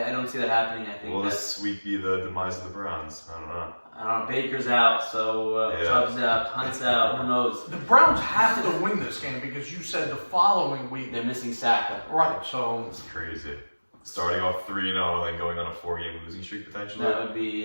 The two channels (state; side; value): inverted; both; correlation -1.00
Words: don't see that happening. I think. Will this week be the demise of the Browns? I don't know. Baker's out, so Chubb's out, Hunt's out. Who knows? The Browns have to win this game because you said the following week they're missing Saka. Right, so it's crazy. Starting off 3-0 and then going on a 4-game losing streak potentially. That would